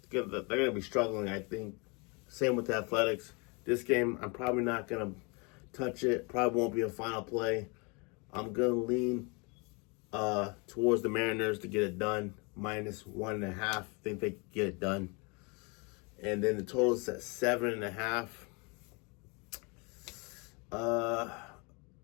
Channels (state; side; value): quieter; right; 30.6 dB